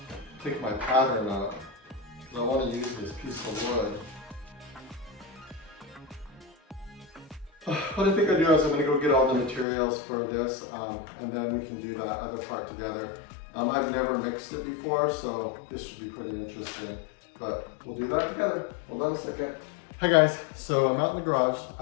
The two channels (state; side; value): drops out; right; at 9.7 s